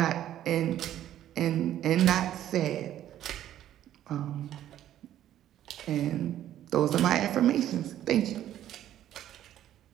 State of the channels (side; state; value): left; quieter; 11.9 dB